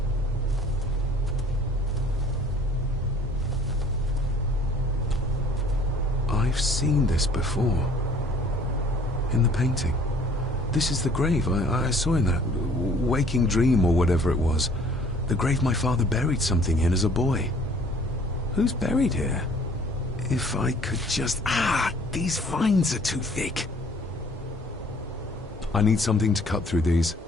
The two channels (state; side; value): normal; both; correlation 0.55